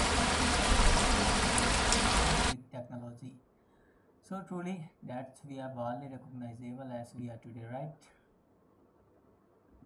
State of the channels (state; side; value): identical; both; correlation 1.00